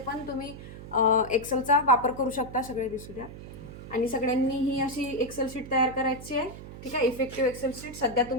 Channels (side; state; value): right; noise; hum, 13 dB below the sound